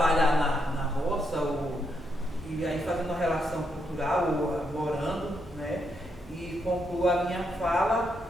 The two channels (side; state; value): both; normal; correlation 0.79